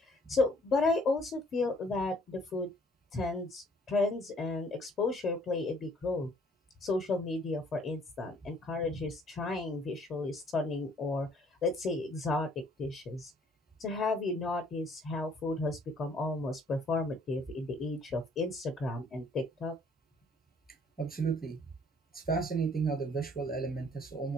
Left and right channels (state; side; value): normal; both; correlation 0.60